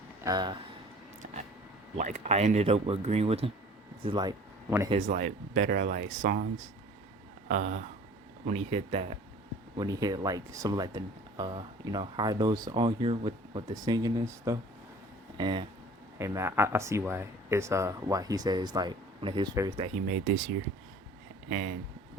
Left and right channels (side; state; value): both; normal; correlation 0.48